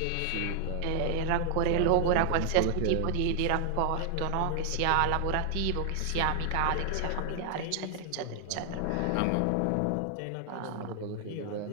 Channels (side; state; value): both; different; correlation 0.00